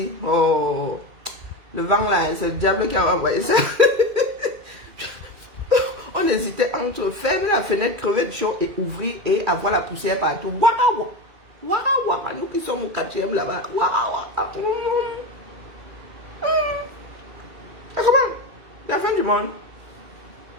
Oh, le vent là, c'est le diable qui a envoyé ça. On hésitait entre fermer la fenêtre, crever le chaud et ouvrir et avoir la poussière partout. Waouh! Waouh! Nous qui sommes au 4e là-bas. Waouh! Comment? La fin du monde.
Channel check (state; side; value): late; left; 2.3 ms